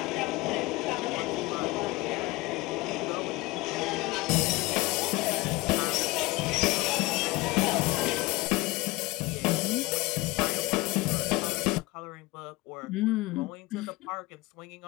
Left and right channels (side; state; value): right; quieter; 21.7 dB